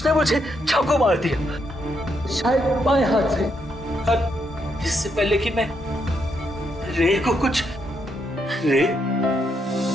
मुझे चाकू मार दिया, शायद बाएं हाथ से। और इससे पहले कि मैं रे को कुछ रे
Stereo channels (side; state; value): both; normal; correlation 0.78